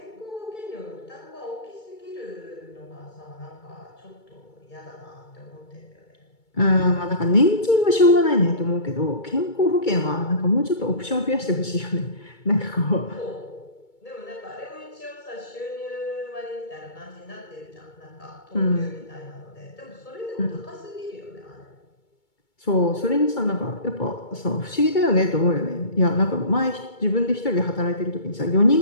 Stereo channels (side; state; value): right; late; 2.2 ms